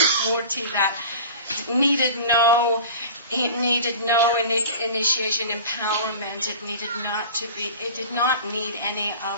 murti that needed no initiation, empowerment. It did not need any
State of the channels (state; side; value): inverted; both; correlation -0.38